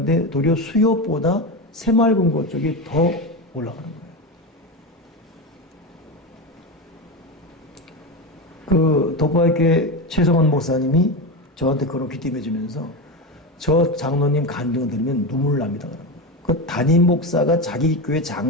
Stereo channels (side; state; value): both; normal; correlation 0.18